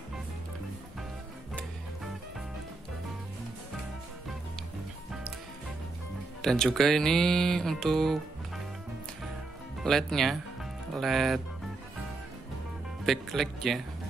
Dan juga ini untuk LED-nya, LED backlight ya.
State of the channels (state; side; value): quieter; left; 3.4 dB